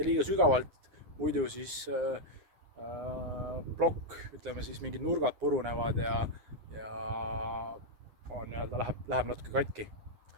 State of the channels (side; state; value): left; late; 9.7 ms